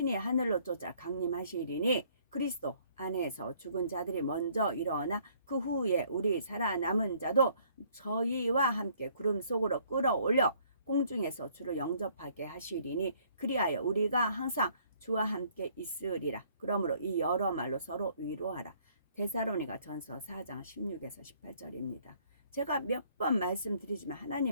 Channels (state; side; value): inverted; both; correlation -0.62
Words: 하늘로 쫓아 강림하시리니 그리스도 안에서 죽은 자들이 먼저 일어나 그 후에 우리 살아남은 자도 저희와 함께 구름 속으로 끌어올려 공중에서 주를 영접하게 하시리니 그리하여 우리가 항상 주와 함께 있으리라. 그러므로 이 여러 말로 서로 위로하라. 데살로니가 전서 4장 16에서 18절입니다. 제가 몇 번 말씀드리지만